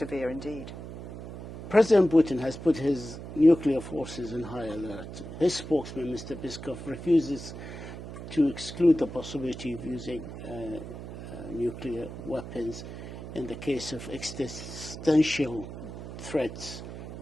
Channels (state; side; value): noise; right; hum, 10 dB below the sound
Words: indeed. President Putin has put his nuclear forces in high alert. His spokesman, Mr. Peskov, refuses to exclude the possibility of using nuclear weapons in the case of existential threats